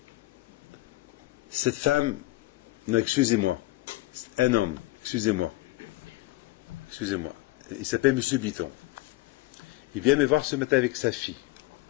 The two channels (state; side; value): quieter; right; 18.8 dB